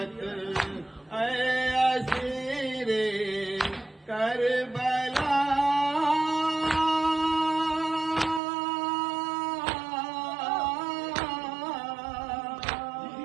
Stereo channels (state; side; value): drops out; left; at 8.4 s